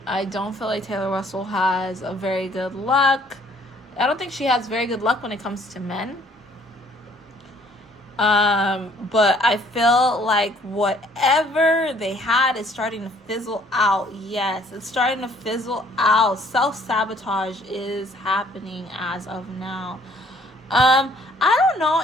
I don't feel like Taylor Russell has a very good luck. I don't think she has very good luck when it comes to men. But I feel like whatever they had is starting to fizzle out. Yes, it's starting to fizzle out. Self-sabotage is happening as of now. I don't know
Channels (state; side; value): normal; both; correlation 0.61